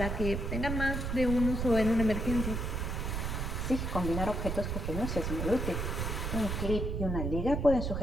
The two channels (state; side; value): noise; right; rumble, 2 dB below the sound